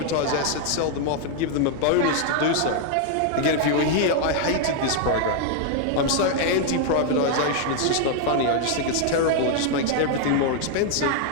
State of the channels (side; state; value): both; different; correlation 0.00